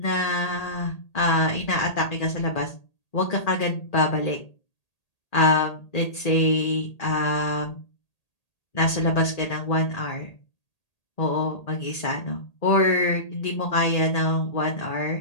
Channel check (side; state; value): right; late; 1.8 ms